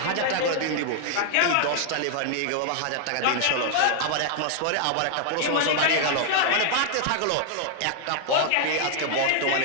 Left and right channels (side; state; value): both; different; correlation 0.00